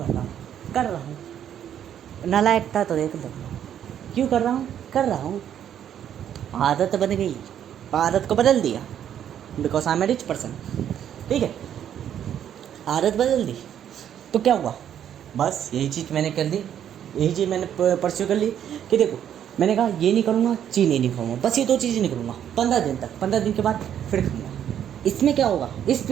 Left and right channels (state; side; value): quieter; left; 9.8 dB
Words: रहा हूँ, नालायक था तो देख लो, क्यों कर रहा हूँ, आदत बन गई, आदत को बदल दिया because I am a rich person. ठीक है, आदत बदल दी तो क्या हुआ? बस यही चीज़ मैंने कर दी, यही चीज़ मैंने परस्यू कर ली कि देखो, मैंने कहा ये नहीं करूँगा, चीनी नहीं खाऊंगा, बस ये 2 चीज़ें नहीं करूँगा 15 दिन तक। 15 दिन के बाद फिर खाऊंगा। इसमें क्या होगा? इस